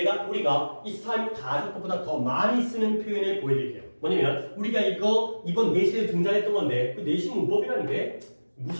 우리가 이 스타일 가정법보다 더 많이 쓰는 표현을 보여드릴게요. 뭐냐면 우리가 이거 이번 내신에 등장했던 건데 그 내신 문법이라는 게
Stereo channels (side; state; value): both; inverted; correlation -1.00